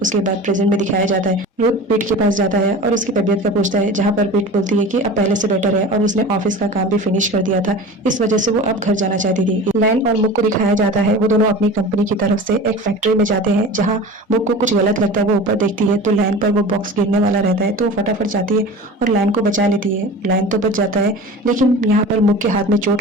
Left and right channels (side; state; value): both; normal; correlation 0.35